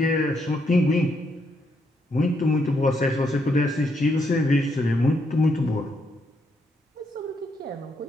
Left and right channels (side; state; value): both; normal; correlation 0.77